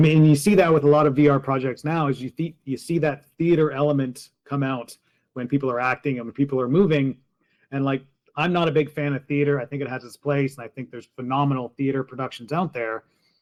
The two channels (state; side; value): identical; both; correlation 1.00